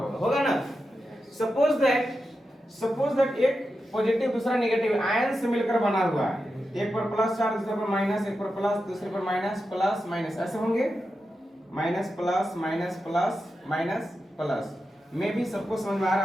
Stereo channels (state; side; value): normal; both; correlation 0.89